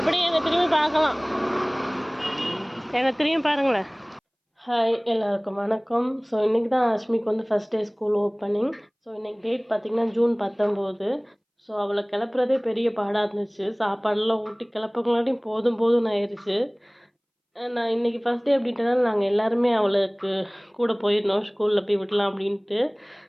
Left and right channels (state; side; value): identical; both; correlation 1.00